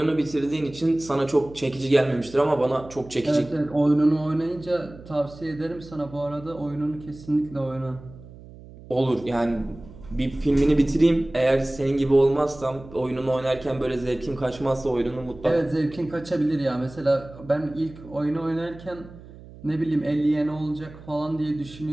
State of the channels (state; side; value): noise; right; hum, 18 dB below the sound